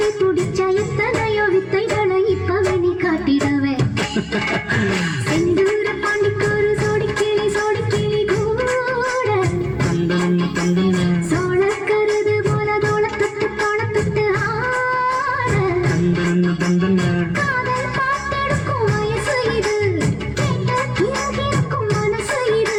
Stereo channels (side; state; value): both; identical; correlation 1.00